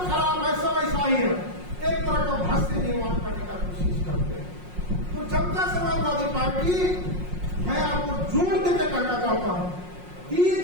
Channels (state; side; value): late; left; 5.5 ms